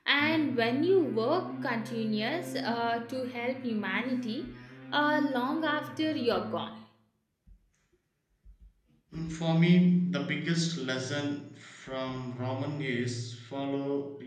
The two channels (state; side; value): identical; both; correlation 1.00